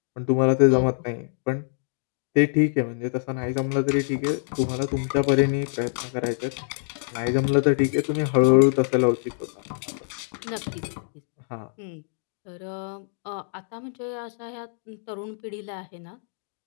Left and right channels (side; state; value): right; silent; 61 dB below the other